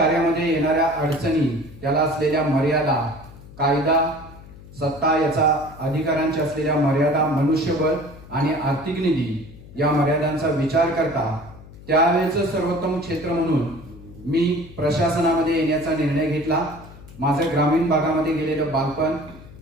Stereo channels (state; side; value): noise; left; hum, 19 dB below the sound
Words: येणाऱ्या अडचणी, त्याला असलेल्या मर्यादा, कायदा, सत्ता याचा अधिकारांच्या असलेल्या मर्यादा, मनुष्यबळ आणि आर्थिक निधी या मर्यादांचा विचार करता त्यावेळेचं सर्वोत्तम क्षेत्र म्हणून मी प्रशासनामध्ये येण्याचा निर्णय घेतला. माझं ग्रामीण भागामध्ये गेलेलं बालपण,